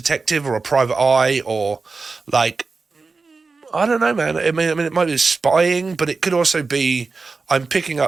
or a private eye, or like, I don't know, man. I mean, it might be spying, but it could also be I'm picking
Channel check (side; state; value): left; quieter; 4.2 dB